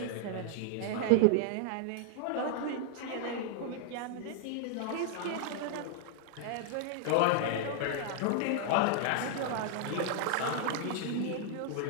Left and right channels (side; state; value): both; different; correlation 0.00